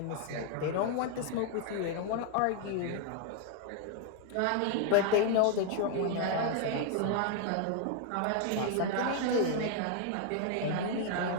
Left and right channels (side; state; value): both; different; correlation 0.00